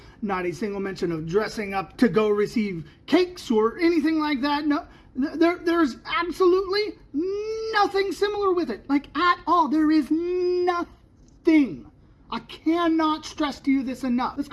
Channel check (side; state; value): both; identical; correlation 1.00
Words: not a single mention of dressing up to go receive cakes or anything like that. No, there's absolutely nothing similar with it, like at all. There is nothing. thing. I cannot stress to you this enough. Let's